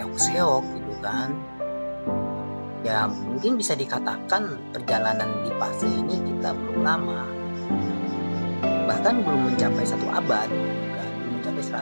gitu kan. Ya mungkin bisa dikatakan perjalanan di fase ini kita belum lama, bahkan belum mencapai 1 abad, kan? Belum mencapai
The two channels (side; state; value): both; inverted; correlation -1.00